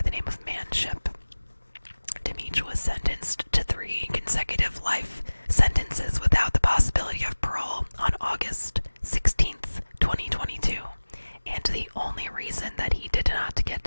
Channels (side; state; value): both; inverted; correlation -1.00